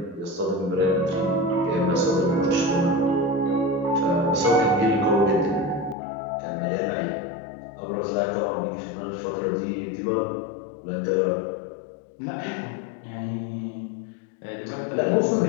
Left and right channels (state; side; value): drops out; right; at 6.0 s